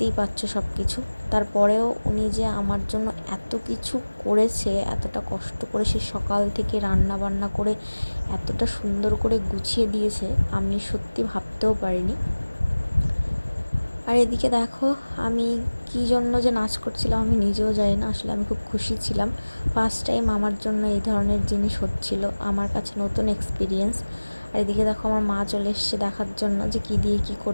পাচ্ছ সব কিছু। তারপরেও উনি যে আমার জন্য এত কিছু করেছে, এতটা কষ্ট করে সে সকাল থেকে রান্না বান্না করে এতটা সুন্দর করে গুছিয়ে দিয়েছে, আমি সত্যি ভাবতেও পারিনি। আর এদিকে দেখো আমি কী জন্য যে নাচ করছিলাম আমি নিজেও জানি না। আসলে আমি খুব খুশি ছিলাম, ফার্স্ট টাইম আমার জন্য এই ধরনের জিনিস হচ্ছিল, আমার কাছে নতুন এক্সপিরিয়েন্স। আর এদিকে দেখো আমার মা চলে এসছে দেখার জন্য যে কী দিয়ে কী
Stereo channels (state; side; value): inverted; both; correlation -1.00